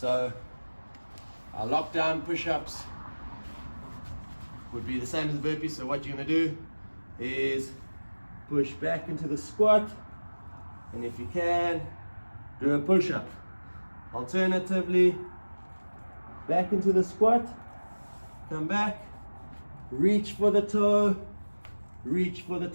our lockdown push-ups would be the same as the burpees. So what you're going to do is push back into the squat, and if you can, do a push-up. Alternatively, back into the squat, come back, reach for the toe, reach for the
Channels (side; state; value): both; inverted; correlation -1.00